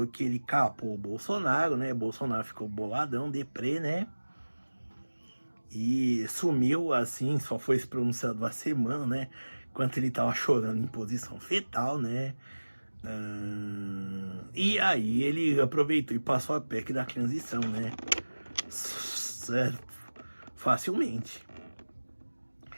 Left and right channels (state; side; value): inverted; both; correlation -1.00